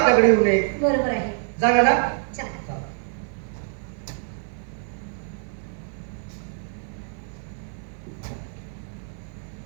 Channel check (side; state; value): left; silent; 61 dB below the other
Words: येऊ नये. बरोबर आहे. जागा ना. चला.